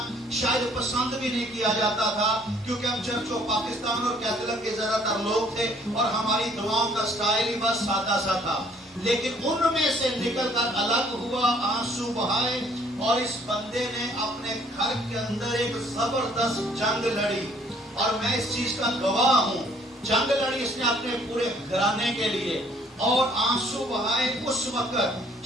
شاید پسند بھی نہیں کیا جاتا تھا، کیونکہ ہم چرچ و پاکستان اور کیتھولک کے زیادہ تر لوگ تھے اور ہماری دعاؤں کا سٹائل ہی بس سادہ سا تھا۔ لیکن ان میں سے نکل کر الگ ہوا، آنسو بہائے، اور اس بندے نے اپنے گھر کے اندر ایک زبردست جنگ لڑی، اور میں اس چیز کا گواہ ہوں۔ جنگ لڑی اس نے اپنے پورے گھرانے کے لیے، اور آنسو بہائے۔ اس وقت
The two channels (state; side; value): normal; both; correlation 0.61